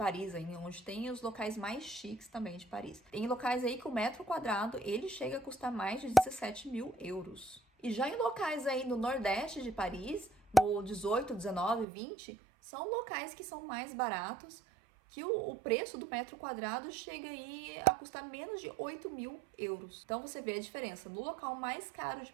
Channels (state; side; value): drops out; left; at 11.9 s